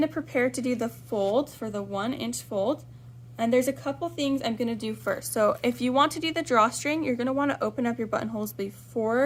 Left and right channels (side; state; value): both; identical; correlation 1.00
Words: to prepare to do the fold for the 1 inch fold. And there's a couple things I'm going to do first. So if you want to do the drawstring, you're going to want to open up your buttonholes